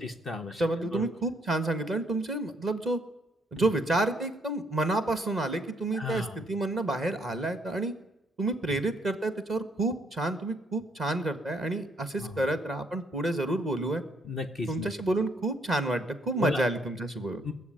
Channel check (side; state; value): both; normal; correlation 0.69